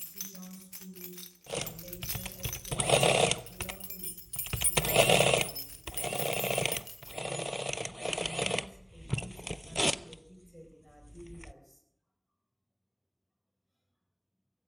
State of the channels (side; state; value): both; identical; correlation 1.00